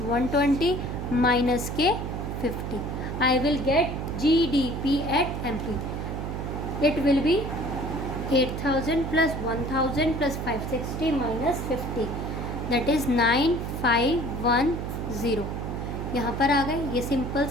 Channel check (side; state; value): right; noise; hum, 4 dB below the sound